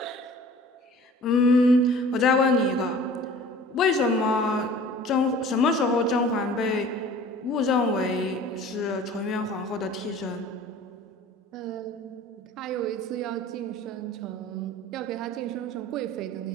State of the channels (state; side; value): normal; both; correlation 0.46